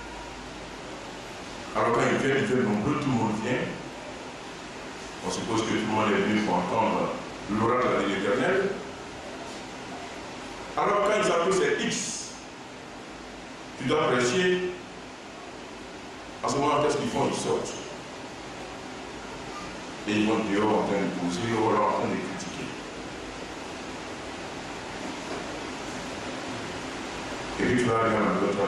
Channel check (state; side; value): identical; both; correlation 1.00